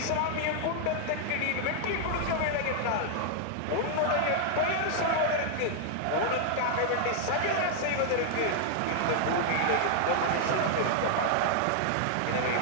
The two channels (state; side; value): different; both; correlation 0.00